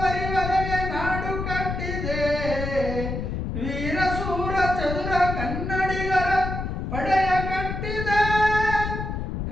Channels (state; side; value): noise; left; rumble, 4 dB below the sound